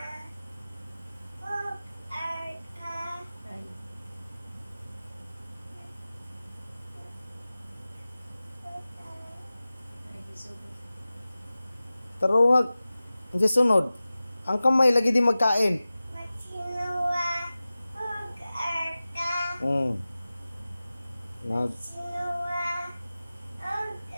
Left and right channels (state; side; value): inverted; both; correlation -0.97